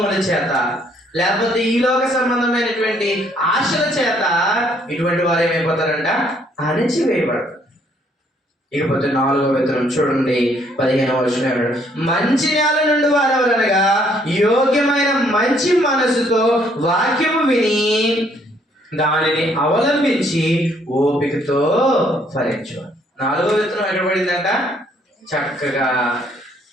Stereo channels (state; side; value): normal; both; correlation 0.66